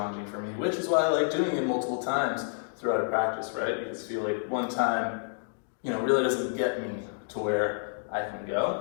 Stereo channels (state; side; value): silent; right; digital silence